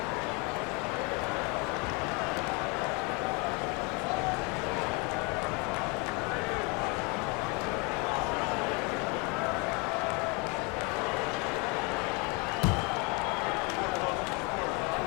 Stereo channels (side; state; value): right; quieter; 29.1 dB